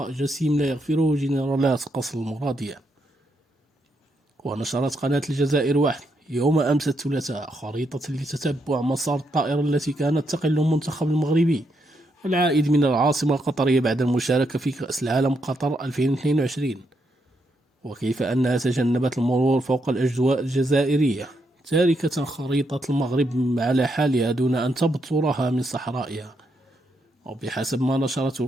جسيم لا يغفره جنرالات قصر المرادية. ونشرت قناة الجزائر واحد يوم أمس الثلاثاء خريطة لتتبع مسار الطائرة التي كانت تقل المنتخب المغربي العائد من العاصمة القطرية بعد المشاركة في كأس العالم قطر 2022، وكيف أنها تجنبت المرور فوق الأجواء الجزائرية، تاركة خريطة المغرب على حالها دون أن تبترها من صحرائها. وبحسب ما نشرته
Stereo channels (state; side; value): normal; both; correlation 0.79